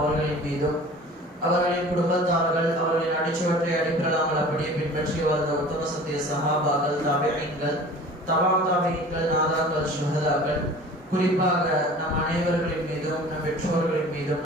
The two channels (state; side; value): normal; both; correlation 0.43